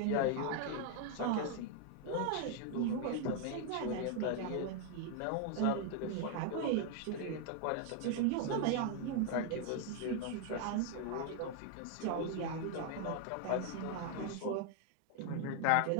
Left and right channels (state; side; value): different; both; correlation 0.00